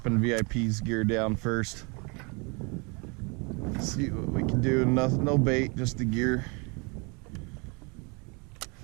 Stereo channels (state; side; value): quieter; left; 31.3 dB